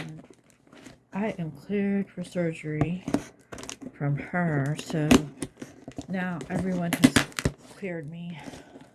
I am cleared for surgery from her, so now everyone has cleared me.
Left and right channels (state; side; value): identical; both; correlation 1.00